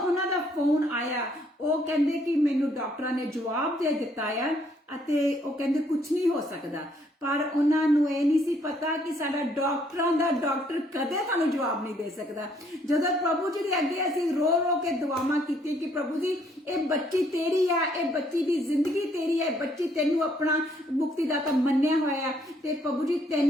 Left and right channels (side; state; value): both; normal; correlation 0.67